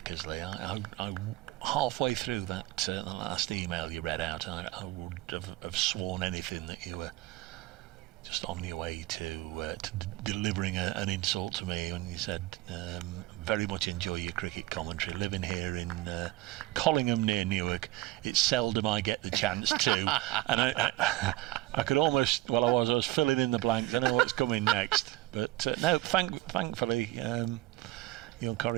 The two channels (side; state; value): left; quieter; 17.2 dB